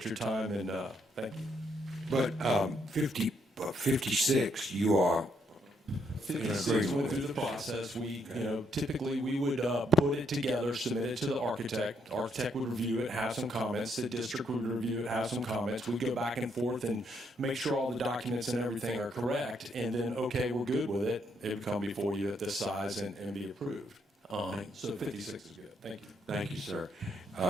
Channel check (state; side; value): normal; both; correlation 0.74